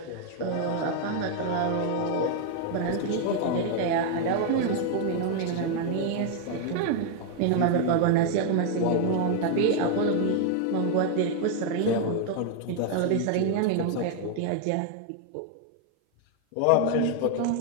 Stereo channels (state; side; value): different; both; correlation 0.00